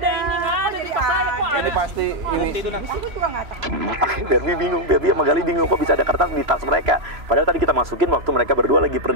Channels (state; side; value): late; left; 3.0 ms